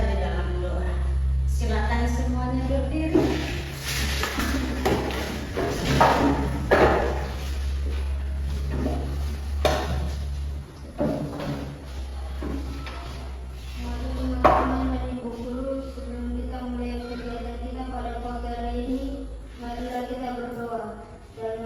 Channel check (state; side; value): identical; both; correlation 1.00